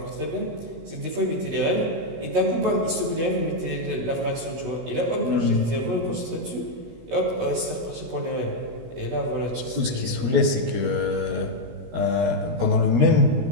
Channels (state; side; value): late; left; 16 ms